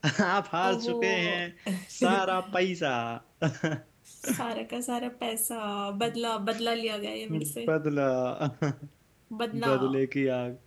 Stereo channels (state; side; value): identical; both; correlation 1.00